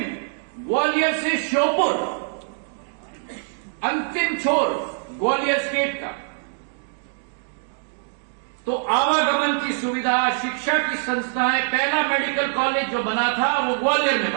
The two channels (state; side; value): silent; left; 63 dB below the other